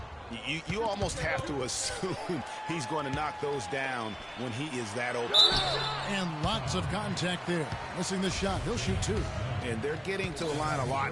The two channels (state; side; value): identical; both; correlation 1.00